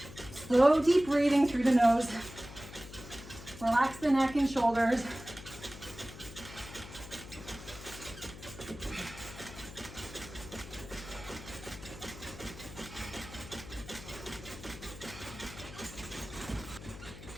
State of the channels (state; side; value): noise; left; hum, 14 dB below the sound